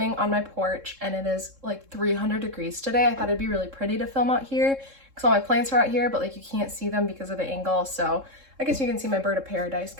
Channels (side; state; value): left; late; 3.7 ms